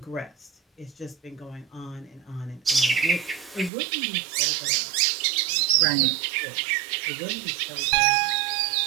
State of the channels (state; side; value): drops out; left; at 3.7 s